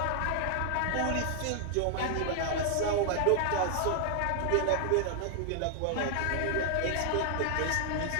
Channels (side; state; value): both; different; correlation 0.00